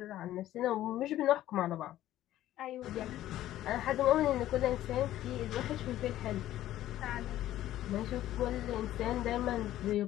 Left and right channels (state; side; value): quieter; right; 13.6 dB